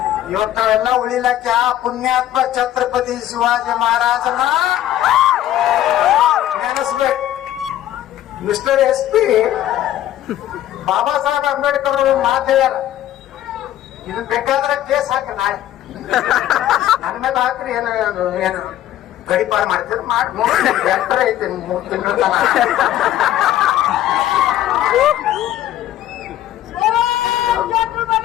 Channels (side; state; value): right; quieter; 12.8 dB